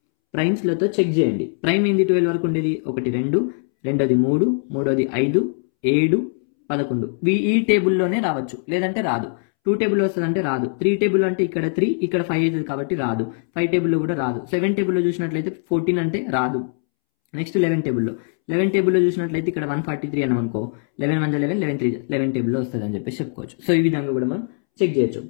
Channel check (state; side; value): silent; right; 65 dB below the other